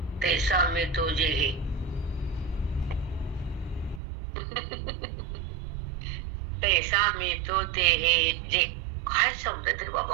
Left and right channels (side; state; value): left; drops out; at 4.0 s